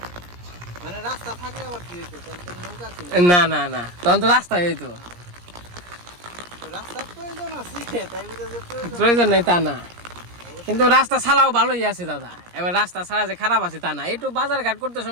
মানে রাস্তা থাকলে আবার কি হইতো তখন তো নৌকা ছিল না না না তখন তো রাস্তায় হইতো রাস্তার প্রয়োজন আছে তাই বুঝা যে প্রয়োজন প্রয়োজন নাই তা না কিন্তু রাস্তা ছাড়াও ভালোই আছে দাদা এবার রাস্তা ছাড়া যে খারাপ আছে তা না একটু বাজার ঘাট করতে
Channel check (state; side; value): late; left; 17 ms